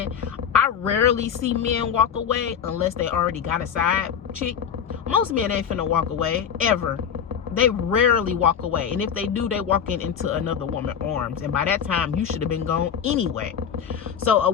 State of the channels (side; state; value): right; quieter; 7.8 dB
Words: I rarely see men walk away unless they already got a side chick. Most men ain't finna walk away, ever. They rarely walk away. And if they do, they walk into another woman's arms. And by that time, you should have been gone anyway. So